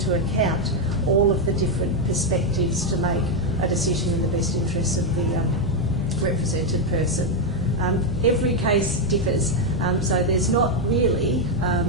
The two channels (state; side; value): normal; both; correlation 0.03